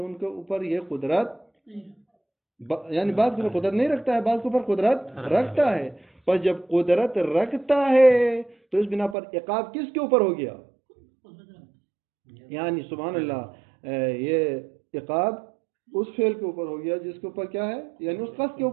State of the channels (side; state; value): left; drops out; at 9.2 s